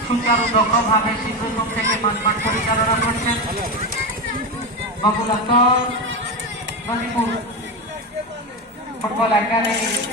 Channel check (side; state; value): both; normal; correlation 0.16